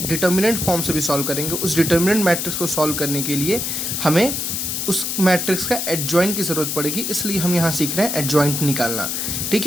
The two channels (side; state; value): left; noise; hiss, 2 dB below the sound